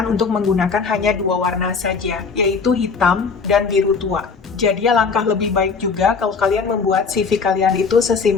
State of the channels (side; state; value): right; quieter; 5.1 dB